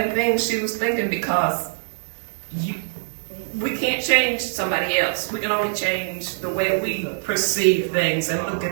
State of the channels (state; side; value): silent; left; digital silence